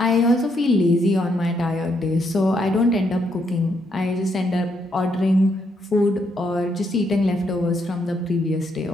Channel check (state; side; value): normal; both; correlation 0.75